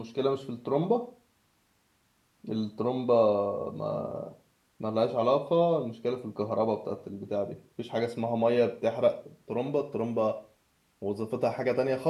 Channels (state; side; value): identical; both; correlation 1.00